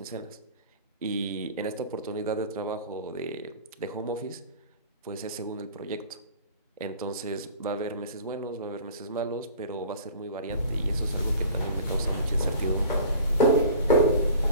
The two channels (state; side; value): inverted; both; correlation -0.42